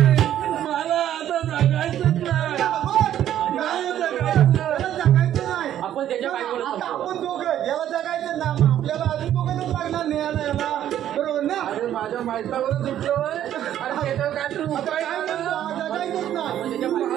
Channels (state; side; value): quieter; left; 11.3 dB